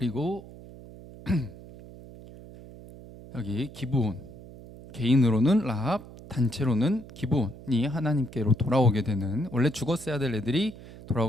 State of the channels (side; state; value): right; noise; hum, 17 dB below the sound